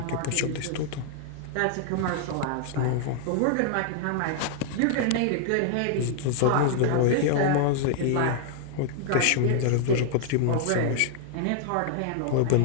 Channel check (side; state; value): both; different; correlation 0.00